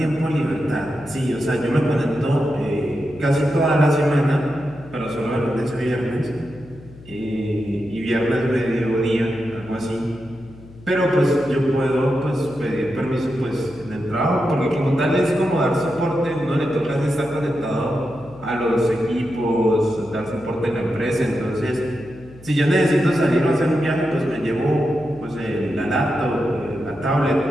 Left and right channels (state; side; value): noise; left; hum, 20 dB below the sound